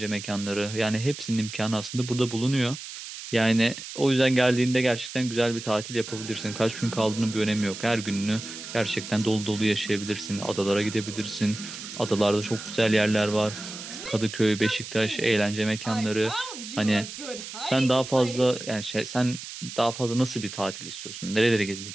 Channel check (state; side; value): noise; right; hiss, 11 dB below the sound